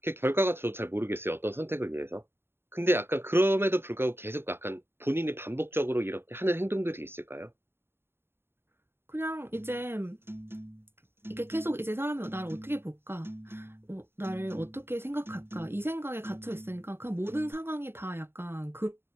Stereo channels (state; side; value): late; left; 0.11 ms